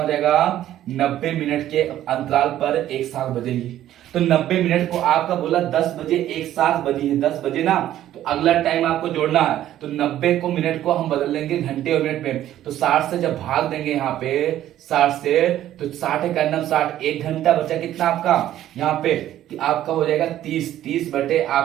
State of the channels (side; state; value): left; quieter; 12.6 dB